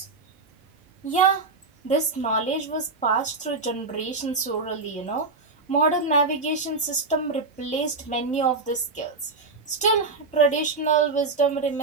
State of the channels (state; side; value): quieter; left; 3.9 dB